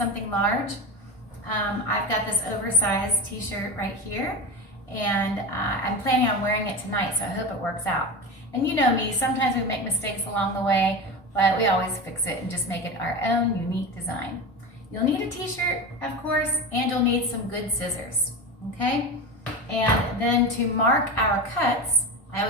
large. I've got this oversized t-shirt right here, and I'm planning on wearing it tonight, so I hope it works out. And you know me, sometimes we make mistakes along the way, but we always fix it and just make it our own unique design. You'll need a t-shirt, of course, and you'll need some good scissors, okay? And then to mark our cuts, I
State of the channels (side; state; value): both; normal; correlation 0.22